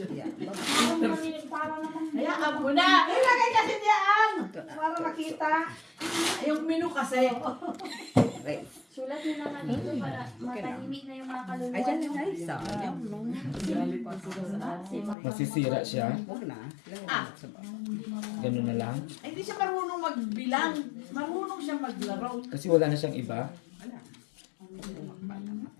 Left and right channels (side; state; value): right; drops out; at 15.2 s